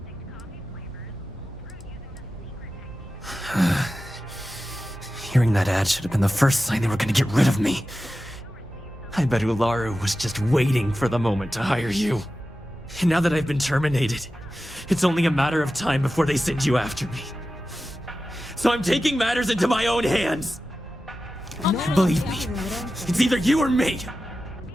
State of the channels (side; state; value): both; normal; correlation 0.93